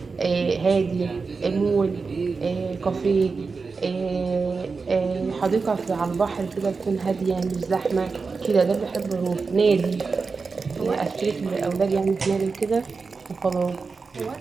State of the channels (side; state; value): left; quieter; 4.6 dB